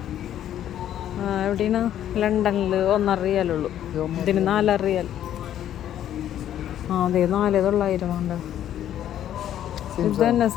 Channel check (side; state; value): right; quieter; 11.1 dB